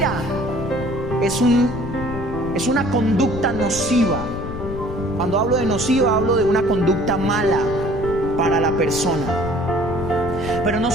es una conducta nociva. Cuando hablo de nociva, hablo de una conducta mala para la persona. Pero no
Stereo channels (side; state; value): left; noise; rumble, 8 dB below the sound